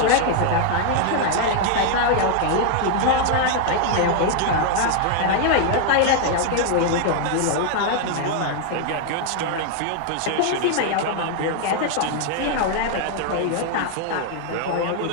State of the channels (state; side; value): different; both; correlation 0.00